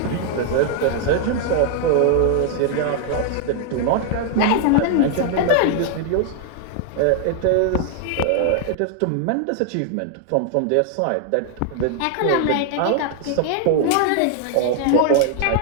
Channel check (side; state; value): both; different; correlation 0.00